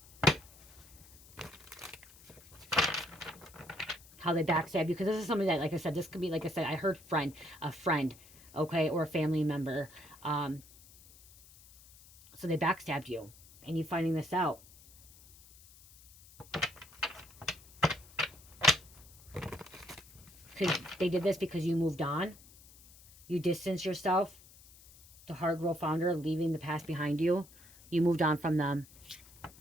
how they backstab you, because this is something that, like I said, this could be, like I said, I heard a friend, okay, or a family member, so they backstabbed you and you finding this out. Because they did this because you moved on, you distanced yourself. The hard role founder, leaving the past behind you. You moved on from them.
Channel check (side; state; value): left; noise; hiss, 23 dB below the sound